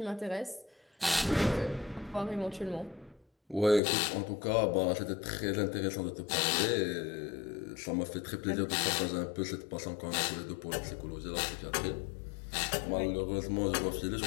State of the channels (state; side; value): drops out; right; at 3.8 s